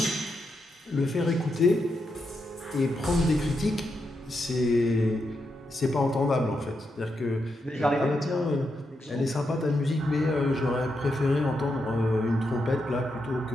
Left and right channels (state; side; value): normal; both; correlation 0.84